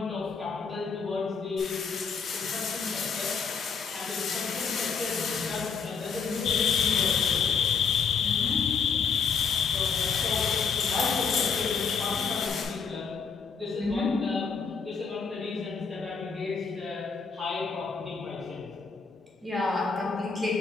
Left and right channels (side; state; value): right; quieter; 5.8 dB